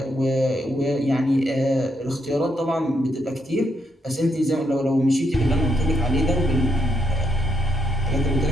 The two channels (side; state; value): both; normal; correlation 0.77